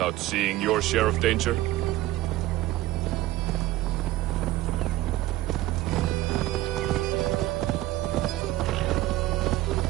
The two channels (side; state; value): left; quieter; 16.1 dB